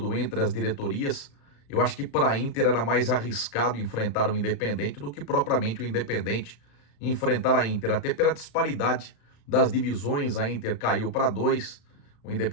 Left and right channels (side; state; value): right; late; 35 ms